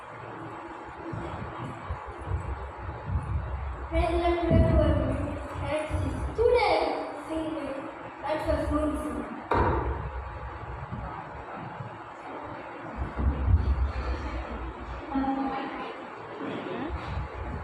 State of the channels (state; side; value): identical; both; correlation 1.00